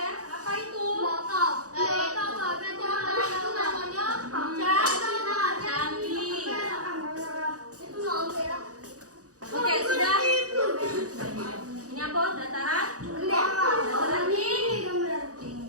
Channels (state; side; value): late; left; 0.67 ms